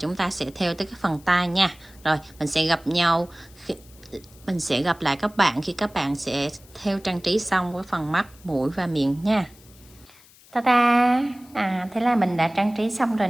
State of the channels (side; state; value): left; noise; hiss, 25 dB below the sound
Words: ta sẽ thêu tới cái phần tai nha. Rồi mình sẽ gặp nhau mình sẽ gặp lại các bạn khi các bạn sẽ thêu trang trí xong với phần mắt, mũi và miệng nha. Ta-da! Thế là mình đã trang trí xong rồi